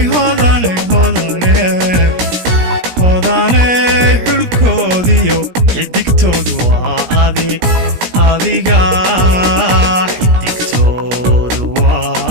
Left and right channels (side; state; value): left; late; 17 ms